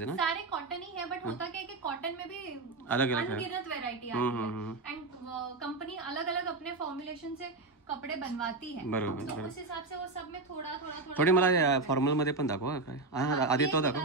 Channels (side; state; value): left; quieter; 3.4 dB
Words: ना. सारे कॉटन ही है, बट होता क्या है कि कॉटन में भी अलग अलग अनगिनत वैरायटी आती है. एंड कंपनी अलग अलग अपने फॉर्मुलेशन से कपड़े बनवाती है. बरोबर. तो उस हिसाब से वो सब में थोड़ा थोड़ा थोडी मला फॉर्मल मध्ये पण दाखवा काय. आधी तो